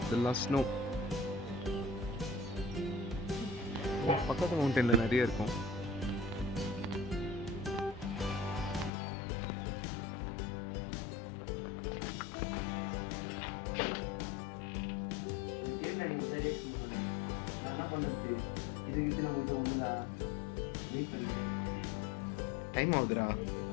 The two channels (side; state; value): right; drops out; at 8.9 s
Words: இதெல்லாம் ஸ்னோ. பக்கத்து மவுண்டனில் நிறைய இருக்கும். என்ன பண்ணுறது இதுக்கு நம்ம ஒன்றுதா வெயிட் பண்ணுறேன். டைம் ஆகுதுடா,